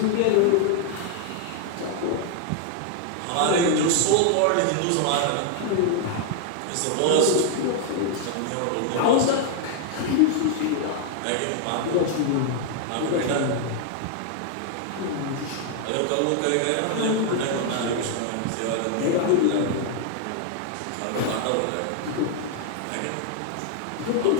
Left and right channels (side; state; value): both; different; correlation 0.00